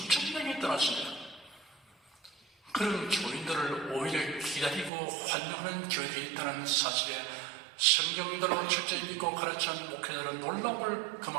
명이 떠났습니다. 그런 교인들을 오히려 기다리고 환영하는 교회들이 있다는 사실에 성경대로 철저히 믿고 가르치는 목회자들은 놀라움을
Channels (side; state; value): left; drops out; at 4.9 s